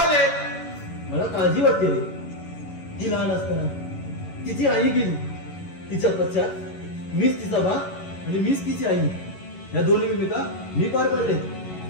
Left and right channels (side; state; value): right; late; 11 ms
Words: मला काळजी वाटते रे. ती लहान असताना तिची आई गेली. तिच्या पश्चात मीच तिचा बाप आणि मीच तिची आई. या दोन्ही भूमिका मी पार पडले.